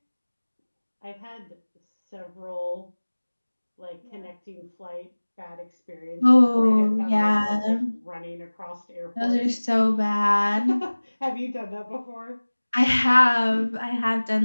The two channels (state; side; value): inverted; both; correlation -1.00